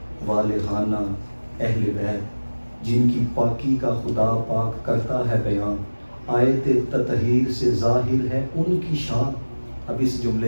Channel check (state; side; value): inverted; both; correlation -1.00